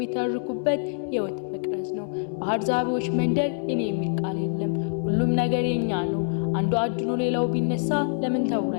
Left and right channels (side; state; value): right; silent; digital silence